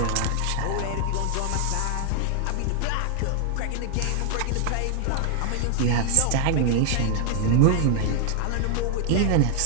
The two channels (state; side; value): different; both; correlation 0.00